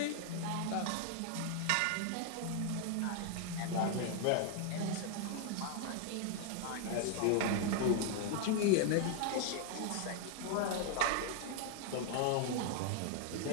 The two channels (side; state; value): both; different; correlation 0.00